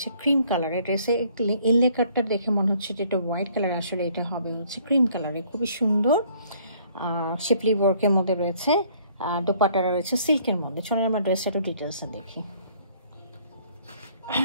ক্রিম কালারের। ড্রেসে ইনলে কাটটা দেখে মনে হচ্ছে যে এটা হোয়াইট কালার, আসলে এটা হবে হচ্ছে ক্রিম কালারে। খুবই সুন্দর শিপলি ওয়ার্কের মধ্যে রয়েছে। দোপাট্টাটা রয়েছে সিল্কের মধ্যে। চলুন আমরা ড্রেসটা একটু ডিটেলসে দেখি।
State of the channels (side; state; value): both; inverted; correlation -0.61